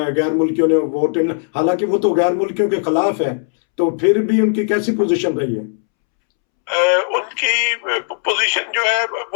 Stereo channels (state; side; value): silent; right; 68 dB below the other